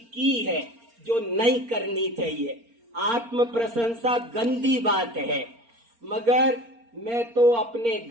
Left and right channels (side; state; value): left; late; 4.3 ms